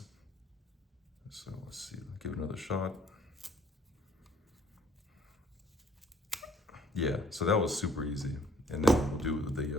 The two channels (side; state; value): both; normal; correlation 0.59